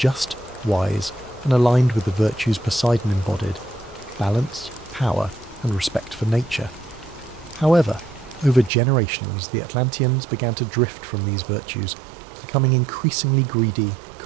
wise, and aligned with the virtues Poseidon embodied: balance, power, and respect for nature. However, over generations, the Atlanteans began to drift from these virtues, becoming increasingly greedy,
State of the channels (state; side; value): drops out; left; at 8.7 s